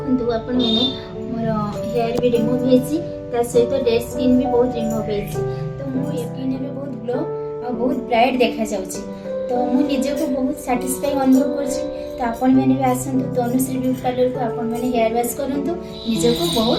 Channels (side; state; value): both; identical; correlation 1.00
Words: आपण माने मोर हेयर भी रिमूव हेछि, ता सहित डेड स्किन भी बहुत रिमूव हेछि। तो मो स्किन भी बहुत ग्लो और बहुत ब्राइट देखा जाउछि। तो मु निजे को बहुत सैटिस्फाई अनुभव करछि। तो आपण माने भी आसंतु तनुश्री ब्यूटी पार्लर को आपण माने हेयर वॉश करंतु, निजे को